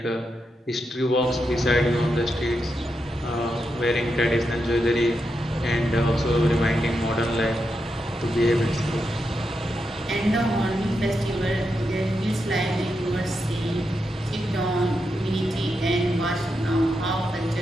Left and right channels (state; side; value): normal; both; correlation 0.85